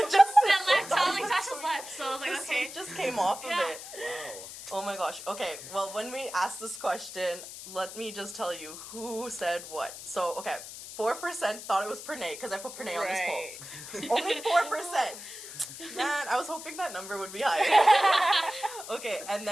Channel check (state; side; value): noise; left; hiss, 12 dB below the sound